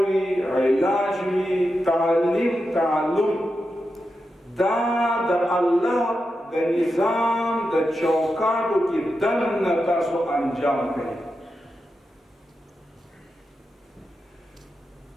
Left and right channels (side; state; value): both; normal; correlation 0.89